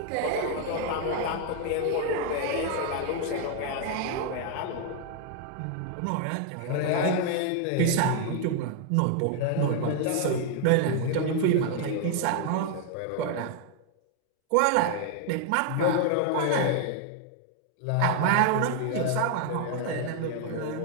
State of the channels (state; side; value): different; both; correlation 0.00